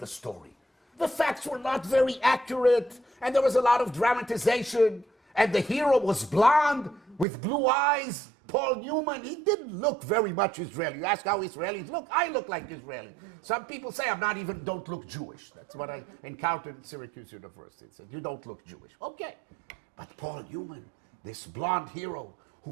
story. The facts were not very accurate, and there was a lot of dramatization, and the hero was blonde with blue eyes. Paul Newman, he didn't look very much Israeli. You ask how Israelis look, I look like Israeli. Some people say don't look Jewish. That's what I encountered at Syracuse University. They said, you don't look Jewish. Okay, but Paul Newman, this blonde hero who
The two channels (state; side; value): drops out; left; at 7.2 s